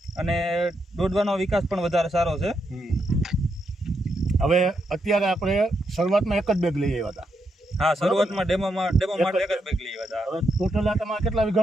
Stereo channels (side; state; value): both; normal; correlation 0.81